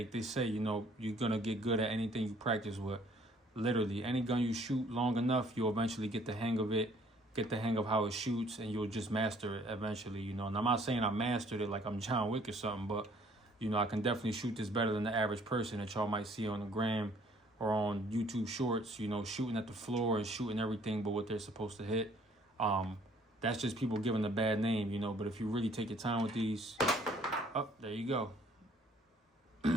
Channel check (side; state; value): both; normal; correlation 0.60